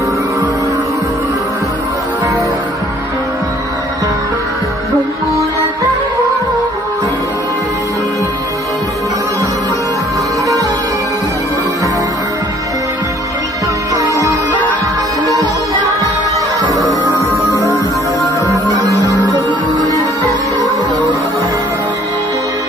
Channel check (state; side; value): normal; both; correlation 0.58